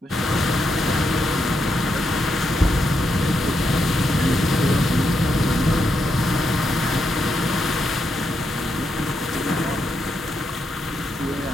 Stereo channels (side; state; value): both; normal; correlation 0.82